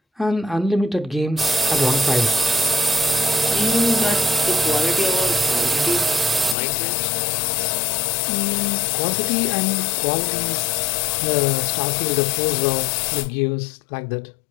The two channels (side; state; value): right; drops out; at 6.6 s